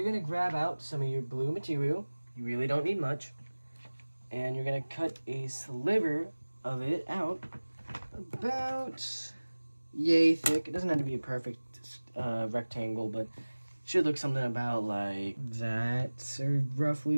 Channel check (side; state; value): both; inverted; correlation -1.00